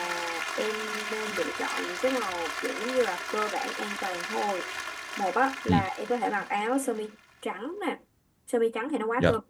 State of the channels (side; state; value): both; identical; correlation 1.00